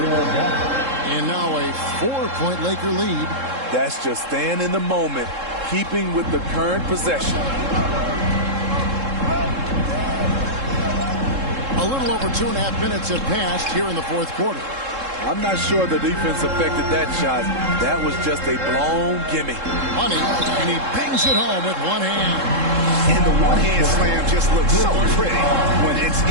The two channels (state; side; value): late; left; 3.7 ms